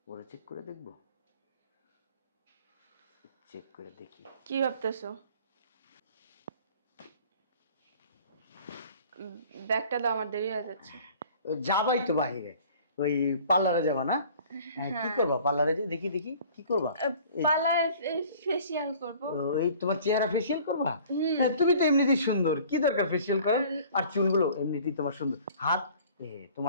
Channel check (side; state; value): both; inverted; correlation -0.50